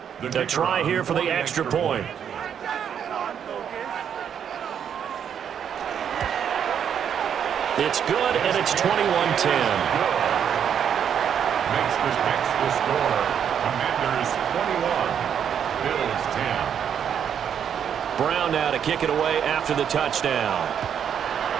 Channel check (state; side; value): quieter; left; 8.4 dB